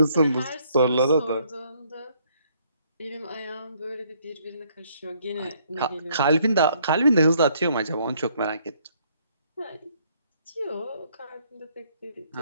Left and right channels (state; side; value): inverted; both; correlation -0.67